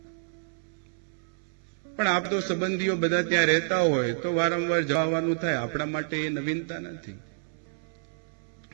પણ આપ તો સંબંધીઓ બધા ત્યાં રહેતા હોય તો વારંવાર જવાનું થાય. આપણા માટે એ નવીનતા નથી.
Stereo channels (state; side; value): silent; left; 59 dB below the other